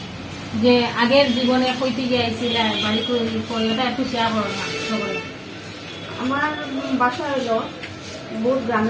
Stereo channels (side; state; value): both; identical; correlation 1.00